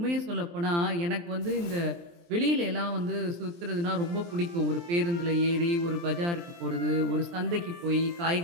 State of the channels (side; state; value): left; late; 23 ms